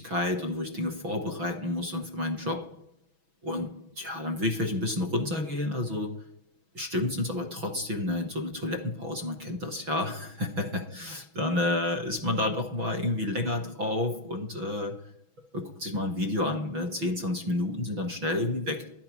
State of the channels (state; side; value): late; left; 6.1 ms